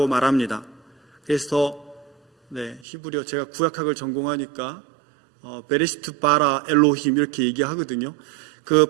말합니다. 그래서 히브리어, 제가 구약학을 전공하니까 베레시트 바라 엘로힘 이렇게 얘기하거든요. 그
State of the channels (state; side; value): drops out; left; at 2.9 s